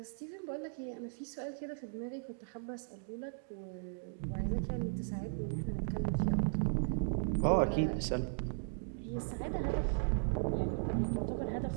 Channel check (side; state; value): left; silent; digital silence